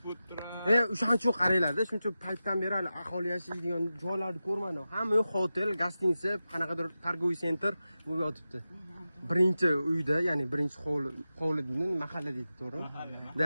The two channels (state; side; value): inverted; both; correlation -0.93